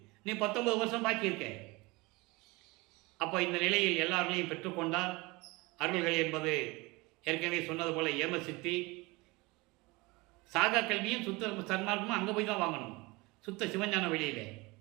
நீ 19 வருஷம் பாக்கி இருக்க. அப்போ இந்த நிலையில் எல்லார்களையும் பெற்றுக்கொண்டால் அருள்கள் என்பது ஏற்கனவே சொன்னது போல ஏம சித்தி. சாகா கல்வியும் சுத்த சன்மார்க்கமும் அங்கே போய் தான் வாங்கணும், சுத்த சிவஞான வெளியில்.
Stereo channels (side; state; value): left; quieter; 24.0 dB